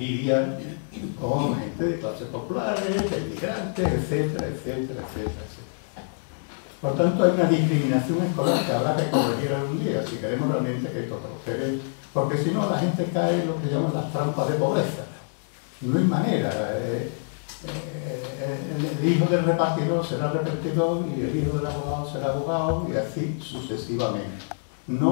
con gente de clases populares, de inmigrantes, etcétera, etcétera, etcétera, etcétera. Por tanto, hay una discriminación escolar que habrá que corregir algún día, si queremos realmente que esto prospere, porque si no la gente cae en lo que llaman las trampas de pobreza. No hay manera. El hijo del repartidor será repartidor y el hijo del abogado será abogado y así sucesivamente.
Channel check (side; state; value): right; silent; digital silence